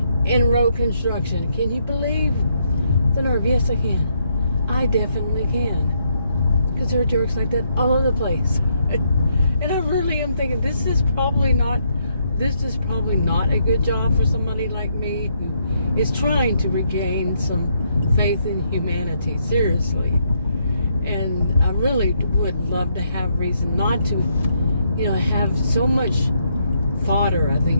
in road construction. Can you believe the nerve? Yes, I can. I definitely can. Because there are jerks like that all over the place. And I really am thinking this is probably not a good job for somebody like me who is trying to regain some faith in humanity, seriously. And I really would love to have reason not to, have so much fodder, I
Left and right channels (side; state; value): both; inverted; correlation -0.75